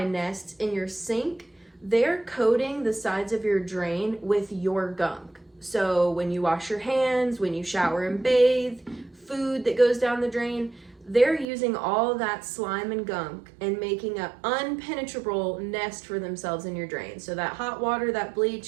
nests in your sink, they're coating the sides of your drain with your gunk. So when you wash your hands, when you shower and bathe, food that goes down the drain, they're using all that slime and gunk and making an unpenetrable nest for themselves in your drain. So that hot water, that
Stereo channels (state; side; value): drops out; left; at 11.5 s